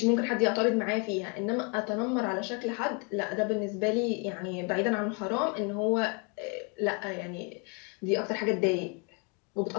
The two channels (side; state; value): right; quieter; 33.5 dB